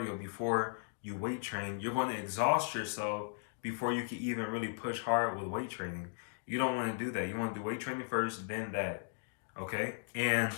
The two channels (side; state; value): right; silent; digital silence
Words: before you weight train, you're going to exhaust yourself before you can even really push hard with weight training. You don't want to do that. You want to do weight training first, then that. Okay? And